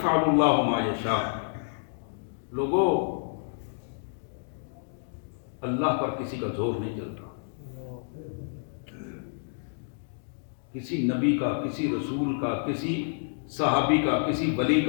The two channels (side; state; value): right; silent; digital silence